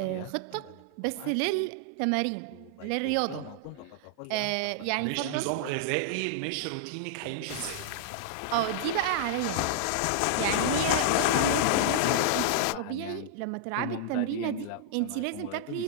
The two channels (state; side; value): different; both; correlation -0.01